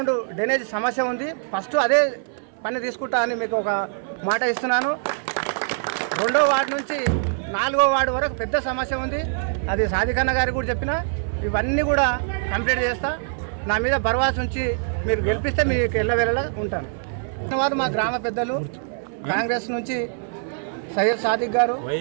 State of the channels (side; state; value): left; silent; 58 dB below the other